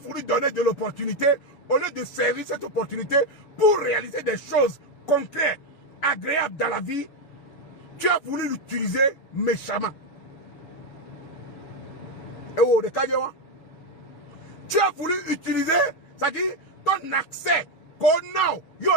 donner de l'opportunité au lieu de servir cette opportunité pour réaliser des choses concrètes, agréables dans la vie. Tu as voulu l'utiliser méchamment. Tu as voulu utiliser, c'est-à-dire ton accès qu'on a,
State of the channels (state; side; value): late; right; 7.0 ms